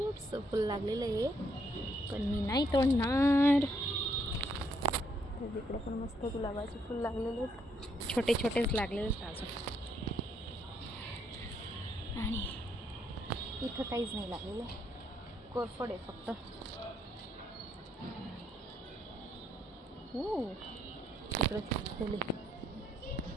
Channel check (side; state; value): both; normal; correlation 0.73